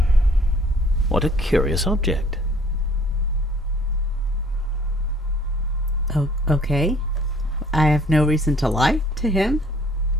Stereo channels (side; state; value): both; normal; correlation 0.57